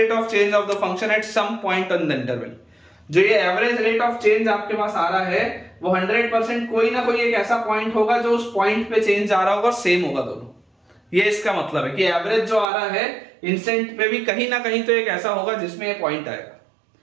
of change of the function at some point on the interval। जो ये average rate of change आपके पास आ रहा है वो 100% कोई ना कोई एक ऐसा पॉइंट होगा जो उस पॉइंट पे चेंज आ रहा होगा, सेम होगा दोनों। ये इसका मतलब है कि एवरेज जो आ रहा है इंस्टेंट पे भी कहीं ना कहीं तो एक ऐसा होगा जिसमें ये पॉइंट आएगा।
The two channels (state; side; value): drops out; left; at 12.7 s